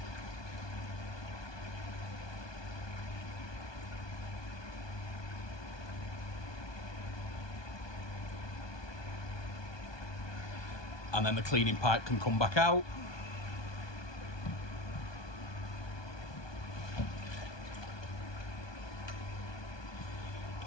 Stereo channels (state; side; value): late; right; 1.2 ms